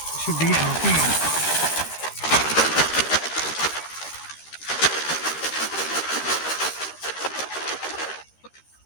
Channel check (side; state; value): right; late; 13 ms